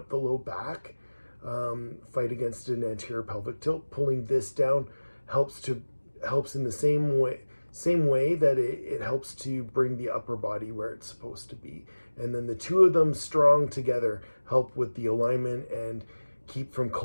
the low back, fight against an anterior pelvic tilt. Pulling this down helps in the same way that it helps to bring the upper body where it's supposed to be. And then the two of them strong together help with the alignment and keep from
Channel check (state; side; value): inverted; both; correlation -1.00